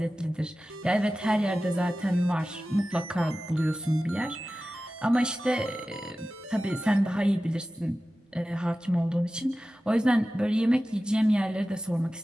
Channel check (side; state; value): both; normal; correlation 0.95